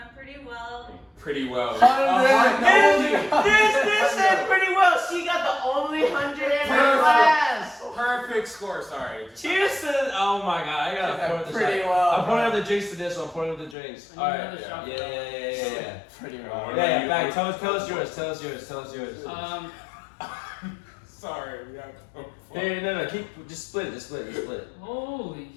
pretty well. Pretty well. This said pretty well. She got the only 100 in her class. Perfect score. Sorry. Cheers to oh my god, I gotta pour the Pretty shot. well. I'm pouring out the drinks to this one. I'm pouring out the drinks. I need Alright. another shot. Yeah. Pretty What well. about Yeah, you? back. Tell us yours. Tell us yours. Sorry. We have to. Hey, no. Just split it. Just split it. Holy.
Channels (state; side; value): drops out; right; at 13.8 s